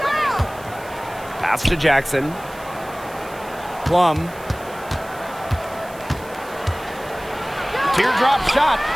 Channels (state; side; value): noise; right; hiss, 21 dB below the sound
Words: Pass to Jackson. Plum. Teardrop shot.